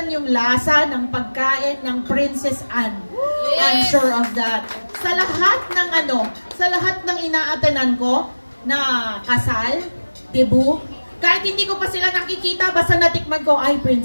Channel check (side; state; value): both; inverted; correlation -1.00